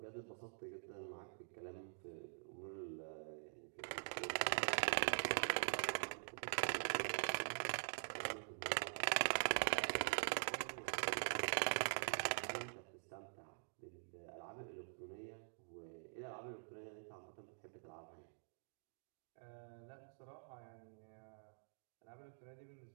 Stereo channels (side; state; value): left; silent; digital silence